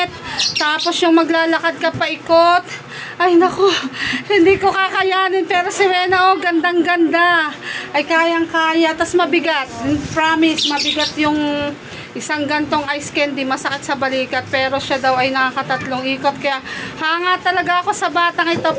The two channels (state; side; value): identical; both; correlation 1.00